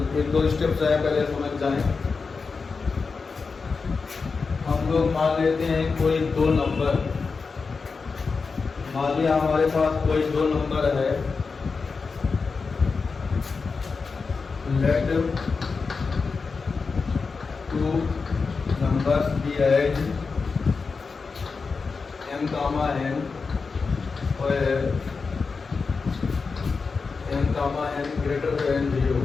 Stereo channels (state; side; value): quieter; right; 4.7 dB